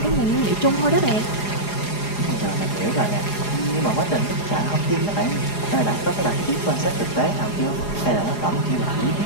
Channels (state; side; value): late; right; 4.8 ms